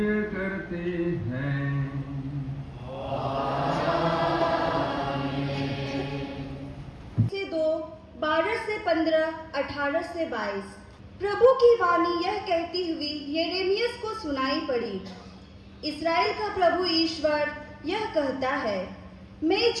करते हैं। से 2, 12 से 15, 18 से 22। प्रभु की वाणी यह कहती हुई यिर्मयाह को सुनाई पड़ी। इस्राएल का प्रभु ईश्वर यह कहता है, मैं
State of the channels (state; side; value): identical; both; correlation 1.00